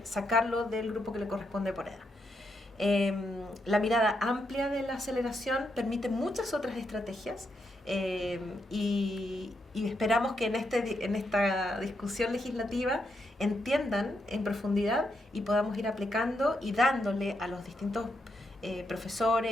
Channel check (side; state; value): both; normal; correlation 0.81